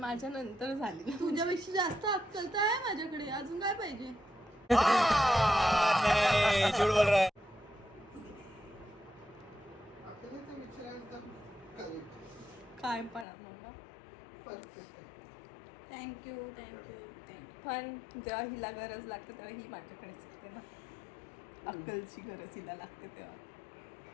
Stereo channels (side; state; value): right; drops out; at 13.2 s